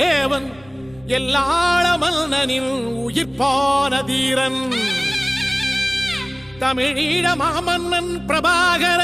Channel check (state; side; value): noise; left; rumble, 26 dB below the sound